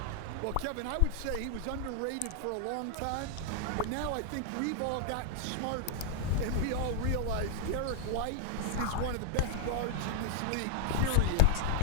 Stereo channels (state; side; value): different; both; correlation 0.00